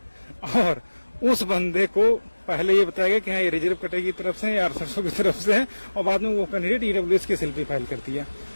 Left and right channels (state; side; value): inverted; both; correlation -1.00